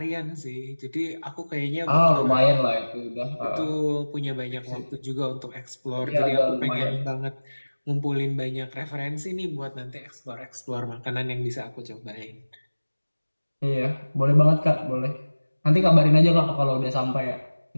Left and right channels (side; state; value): both; inverted; correlation -1.00